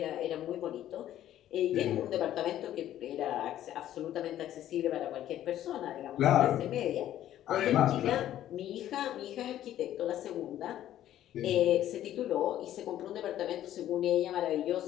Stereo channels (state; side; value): quieter; right; 12.3 dB